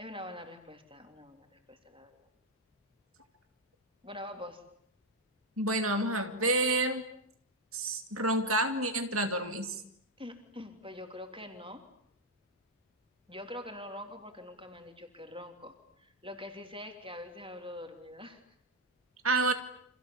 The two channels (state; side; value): normal; both; correlation 0.03